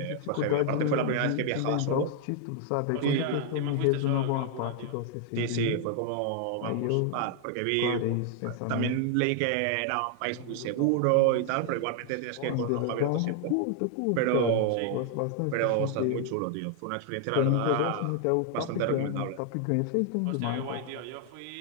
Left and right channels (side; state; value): both; different; correlation 0.00